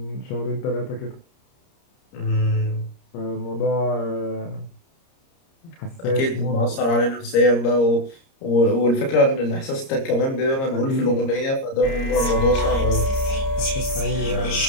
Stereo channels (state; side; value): late; right; 30 ms